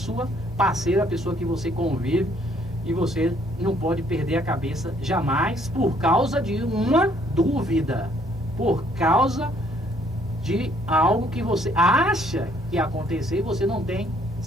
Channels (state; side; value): normal; both; correlation 0.65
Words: parceira, a pessoa que você convive, e você não pode perder a cabeça jamais por causa de uma dúvida, por causa de algo que você acha que aconteceu e você não tem